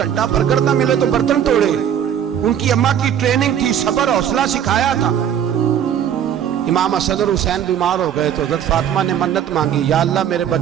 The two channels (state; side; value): quieter; left; 9.4 dB